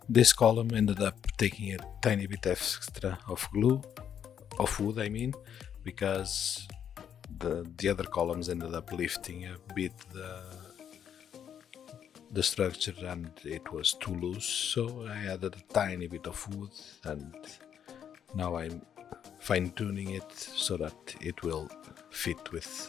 This column ended up taking a tiny bit extra of wood I mean, because the other columns ended up lifting a bit the structure and it was too loose, so I added a tiny bit of wood, and now I'm fine-tuning it so that it will fit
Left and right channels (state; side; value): quieter; right; 8.8 dB